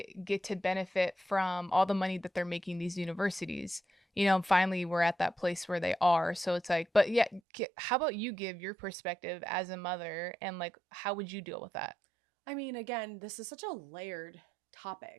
get to benefit from all the money that they're making these universities? You know, finally we're at that place where they are. So it's like, but yeah, how about you give your perspective as a mother and like how would you deal with that? I mean, again, this is such a layered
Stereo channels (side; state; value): left; drops out; at 7.4 s